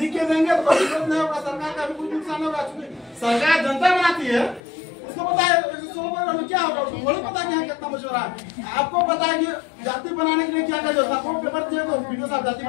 लिख के देंगे तो कोई दिक्कत नहीं होगा, सरकार का भी कुछ नुकसान होगा। सरकार जनता बनाती है, उसको पता है 116 परिवार में क्या होगा, उसको थोड़ी पता है कितना मछुआरा है। आपको पता है कि जाति बनाने के लिए क्या क्या जो था, वो पेपर दिए तो वीडियो साहब जाति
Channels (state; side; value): drops out; right; at 4.6 s